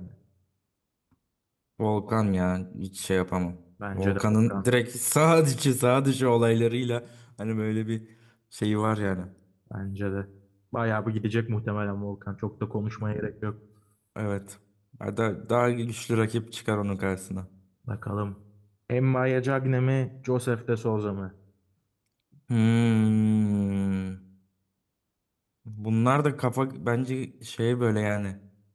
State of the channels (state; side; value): identical; both; correlation 1.00